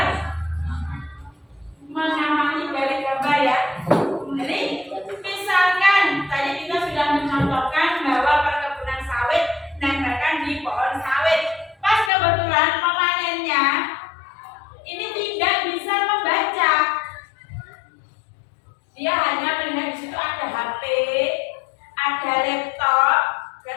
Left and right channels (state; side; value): drops out; right; at 12.1 s